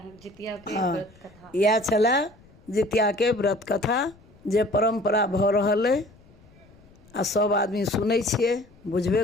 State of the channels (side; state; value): left; noise; rumble, 27 dB below the sound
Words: जितिया के हाँ, व्रत कथा। इएह छलै जितिया के व्रत कथा जे परम्परा भऽ रहल अइ आ सब आदमी सुनै छियै,